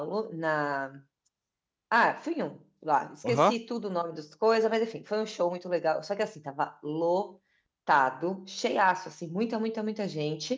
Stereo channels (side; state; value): both; identical; correlation 1.00